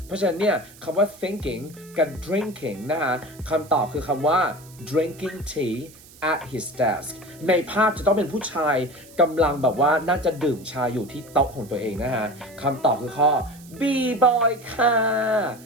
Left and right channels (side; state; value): right; noise; hiss, 22 dB below the sound